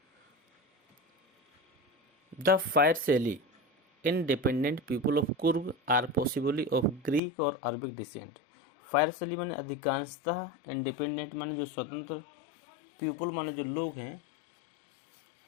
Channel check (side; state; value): right; drops out; at 7.2 s